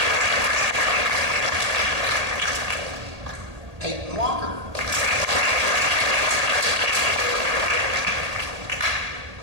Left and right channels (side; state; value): left; late; 1.8 ms